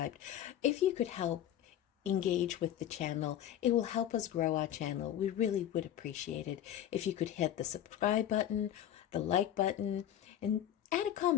If you could help engage with the channel, it will help us grow our channel. We really would appreciate it if you could hit the subscribe button, the like button, and add a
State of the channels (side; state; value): right; quieter; 11.1 dB